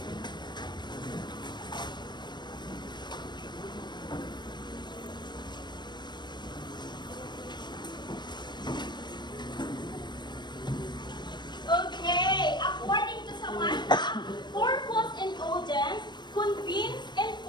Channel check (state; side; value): late; right; 0.22 ms